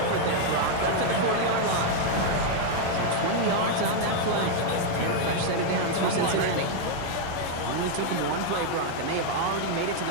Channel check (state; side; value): different; both; correlation 0.00